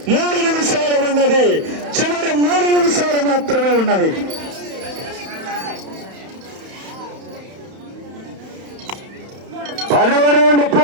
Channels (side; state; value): left; late; 31 ms